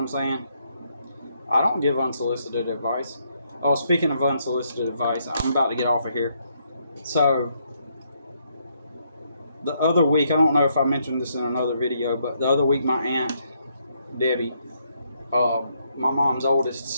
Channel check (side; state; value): both; inverted; correlation -0.74